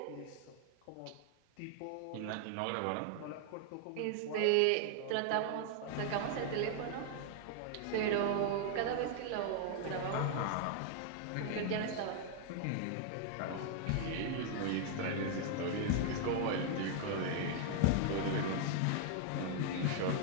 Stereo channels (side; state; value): both; different; correlation 0.00